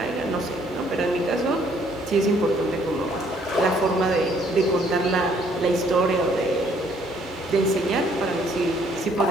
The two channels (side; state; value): both; normal; correlation 0.64